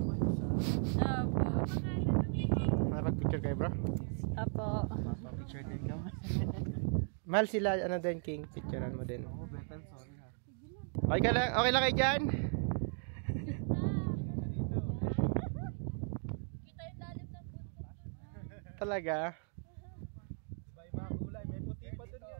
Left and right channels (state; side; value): silent; left; 53 dB below the other